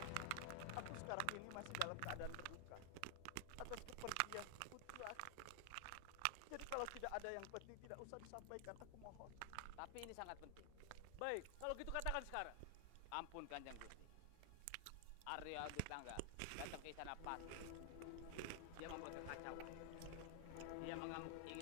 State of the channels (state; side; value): different; both; correlation 0.00